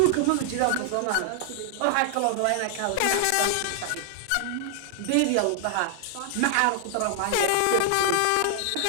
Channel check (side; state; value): both; different; correlation 0.00